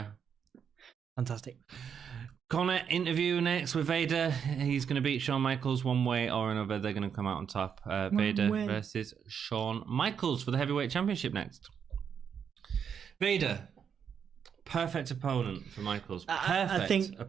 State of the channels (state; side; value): quieter; left; 7.5 dB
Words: fantastic. Connor interview next with Vader. He's going to beat Shawn Michaels one way or another. They're going to come out on top. Vader versus Shawn Michaels for the heavyweight championship next. Vader, perfect opponent for Michaels.